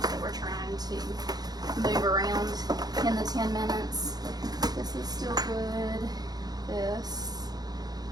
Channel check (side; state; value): left; late; 0.19 ms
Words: we're trying to move around in the 10 minutes. This is still good. This